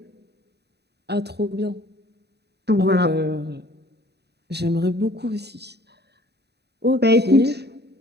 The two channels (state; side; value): late; left; 0.48 ms